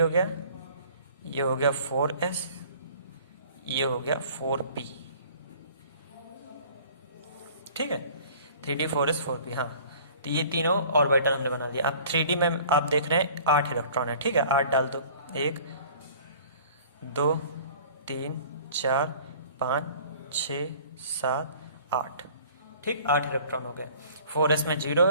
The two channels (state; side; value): inverted; both; correlation -0.49